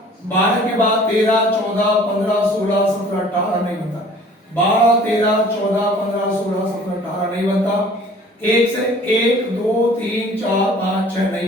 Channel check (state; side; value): normal; both; correlation 0.50